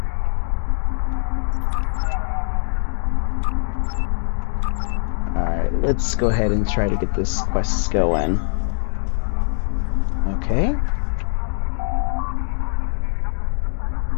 Alright, let's go ahead and try to get this quest going. Okay.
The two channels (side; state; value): right; silent; 64 dB below the other